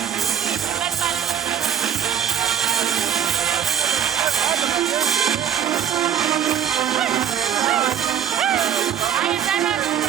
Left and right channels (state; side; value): quieter; left; 9.1 dB